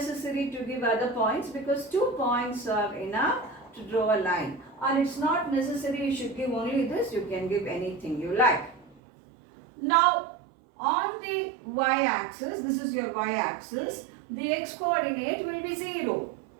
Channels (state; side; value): drops out; left; at 9.0 s